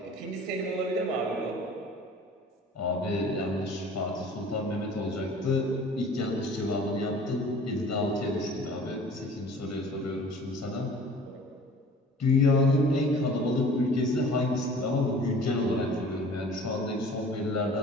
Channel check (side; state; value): both; normal; correlation 0.46